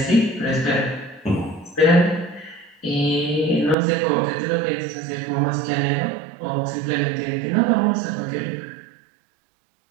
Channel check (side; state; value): left; drops out; at 3.8 s